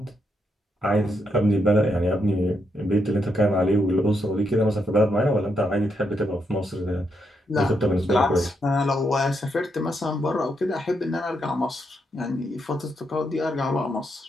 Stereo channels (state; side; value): normal; both; correlation 0.80